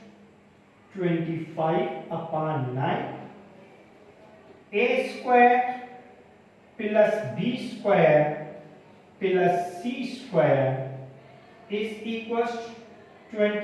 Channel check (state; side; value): identical; both; correlation 1.00